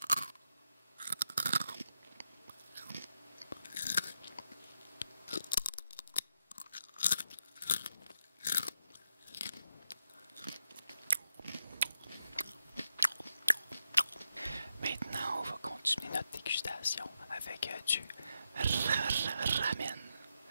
Maintenant, on va continuer notre dégustation avec du ramen.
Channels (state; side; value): inverted; both; correlation -0.84